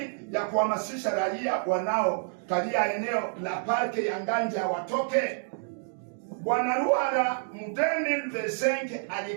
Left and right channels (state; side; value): silent; left; digital silence